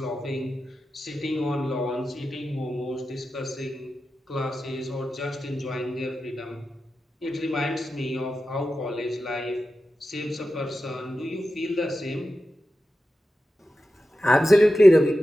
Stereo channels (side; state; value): both; normal; correlation 0.92